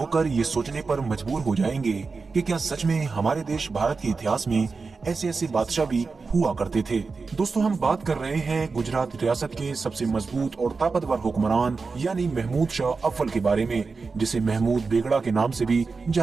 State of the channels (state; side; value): quieter; left; 4.5 dB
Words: ये सोचने पर मजबूर हो जाएंगे कि क्या सच में हमारे देश भारत के इतिहास में ऐसे ऐसे बादशाह भी हुआ करते थे। दोस्तों, हम बात कर रहे हैं गुजरात रियासत के सबसे मजबूत और ताकतवर हुक्मरान यानी महमूद शाह अव्वल के बारे में, जिसे महमूद बेगड़ा के नाम से भी